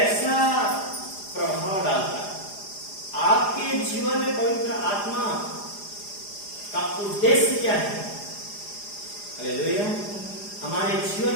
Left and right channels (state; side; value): late; right; 4.9 ms